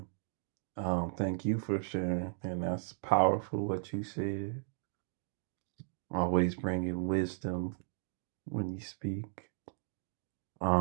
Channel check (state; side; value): silent; left; digital silence